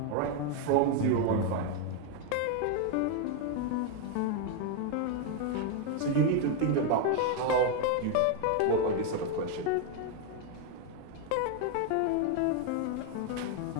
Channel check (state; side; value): different; both; correlation 0.01